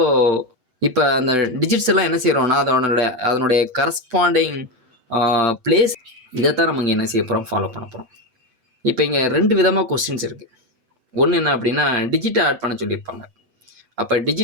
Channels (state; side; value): late; left; 7.9 ms